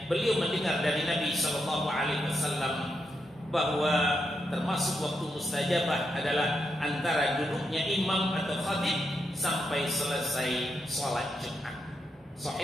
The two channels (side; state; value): both; normal; correlation 0.83